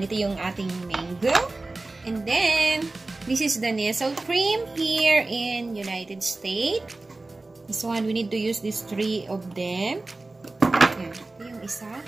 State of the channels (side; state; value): left; quieter; 3.2 dB